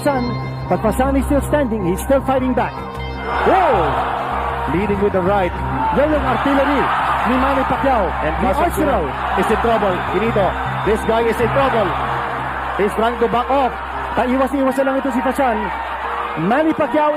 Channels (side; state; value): both; identical; correlation 1.00